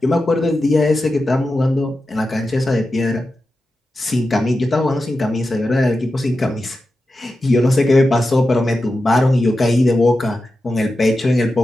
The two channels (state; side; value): normal; both; correlation 0.91